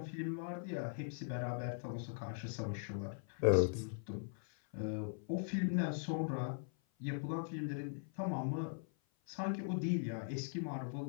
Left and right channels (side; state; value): right; silent; 51 dB below the other